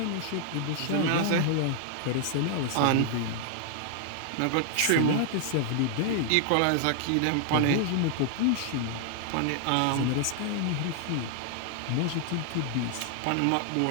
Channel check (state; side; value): different; both; correlation -0.01